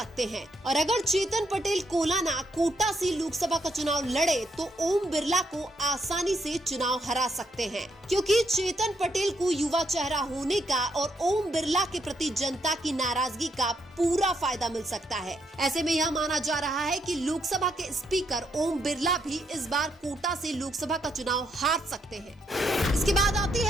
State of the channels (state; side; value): normal; both; correlation 0.76